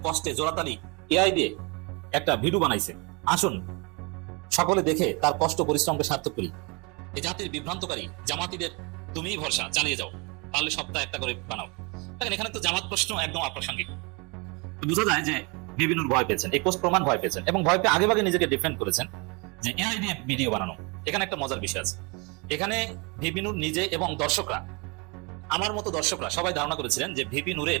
কষ্টে জোরাতালি এআই দিয়ে একটা ভিডিও বানাইছে, আসুন সকলে দেখে তার কষ্ট পরিশ্রমকে সার্থক করি। এই জাতির বিভ্রান্তকারী জামাতিদের তুমিই ভরসা, চালিয়ে যাও, পারলে সপ্তাহে একটা করে বানাও। দেখেন, এখানে তো জামাত প্রশ্ন একদম অপ্রাসঙ্গিক। বোঝা যায় যে ভিপি নূর ভয় পেয়েছেন, এই পোস্ট প্রমাণ ভয় পেয়েছেন এবং ভয় পেয়ে আগেভাগে নিজেকে ডিফেন্ড করেছেন যে এআই দিয়ে ভিডিও বানানো। এখানে একটা মজার বিষয় আছে, এখানে ভিপি নূর নিজে এবং দর্শকরা, আমার মতো দর্শকরা সবাই ধারণা করেছিলেন যে ভিপি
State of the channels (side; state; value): left; quieter; 30.1 dB